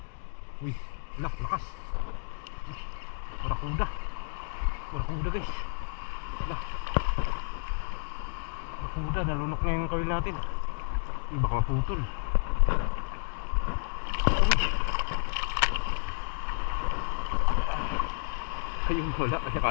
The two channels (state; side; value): silent; right; digital silence